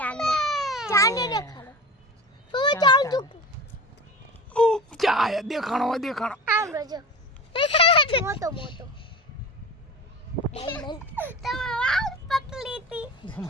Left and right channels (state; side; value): normal; both; correlation 0.32